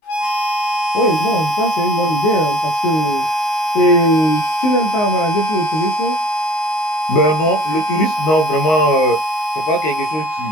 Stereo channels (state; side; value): late; right; 19 ms